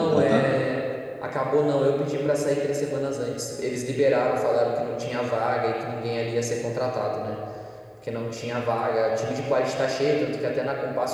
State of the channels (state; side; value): identical; both; correlation 1.00